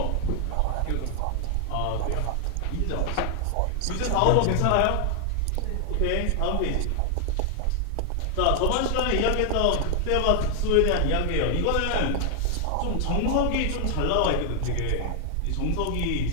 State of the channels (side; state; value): both; different; correlation 0.00